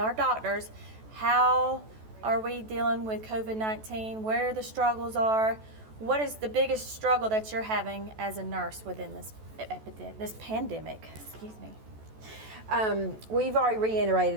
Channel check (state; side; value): late; left; 14 ms